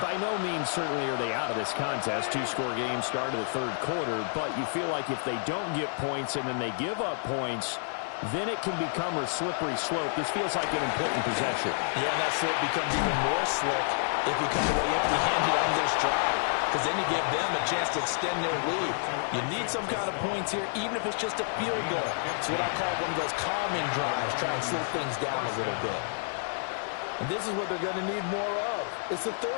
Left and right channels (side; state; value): right; silent; digital silence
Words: By no means certainly are they out of this contest. 2-score game start of the 3rd quarter, but you feel like if they don't get points and then they give up points, then it can become a slippery slope. This feels like an important possession. Yeah, and that slope becomes even more slick if you come away empty-handed on this drive. because then you give them a chance to extend their lead. You need some kind of points here, even if it's just a field goal. It's what I call one of those calming drives, try and slow things down a little bit. And this is what they're going to need more of. It's the